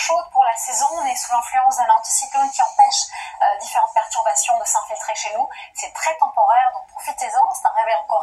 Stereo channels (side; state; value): both; identical; correlation 1.00